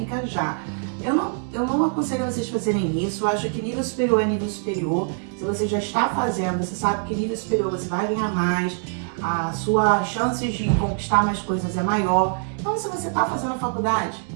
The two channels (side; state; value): left; silent; 57 dB below the other